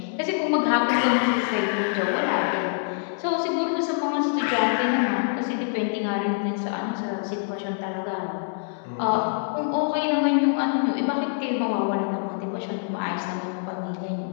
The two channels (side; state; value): right; silent; 62 dB below the other